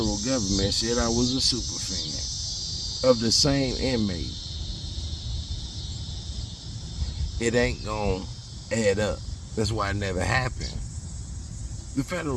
government said I was a super fan of the same inmate? It ain't going to add up. That's why it never happened. The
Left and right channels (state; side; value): identical; both; correlation 1.00